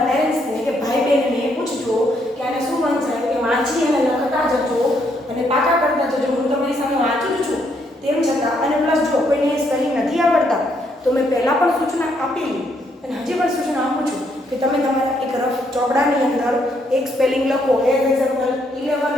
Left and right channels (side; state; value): both; normal; correlation 0.73